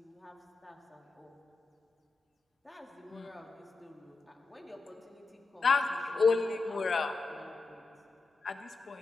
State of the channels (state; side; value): quieter; right; 3.9 dB